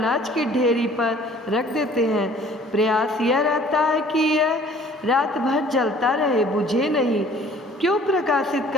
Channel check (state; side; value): normal; both; correlation 0.53